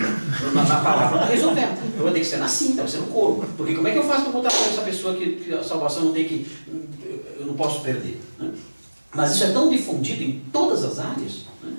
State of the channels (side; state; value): both; inverted; correlation -1.00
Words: palavra não está resolvendo. Vai ter que ser na cinta, vai ser no corpo. Porque como é que eu faço para botar para essa pessoa que a salvação não tem que... eu não posso perder, né? Mas isso é tão difundido em todas as áreas, né,